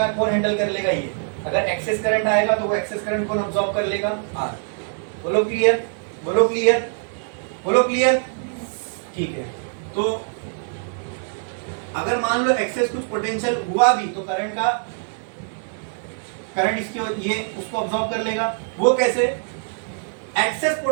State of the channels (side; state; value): left; silent; 63 dB below the other